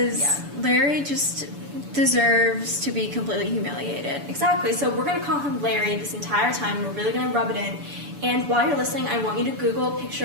Larry just deserves to be completely humiliated. Exactly. So we're going to call him Larry this entire time. We're really going to rub it in. And while you're listening, I want you to Google a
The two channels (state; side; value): late; left; 7.0 ms